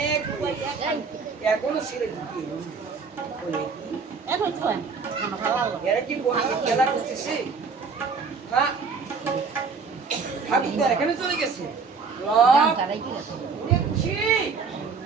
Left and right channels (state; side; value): quieter; left; 5.1 dB